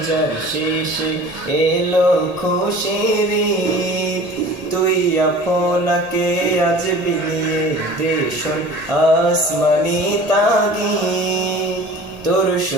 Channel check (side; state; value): both; normal; correlation 0.43